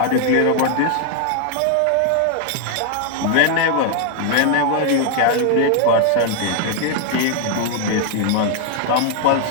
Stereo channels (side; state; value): both; different; correlation 0.00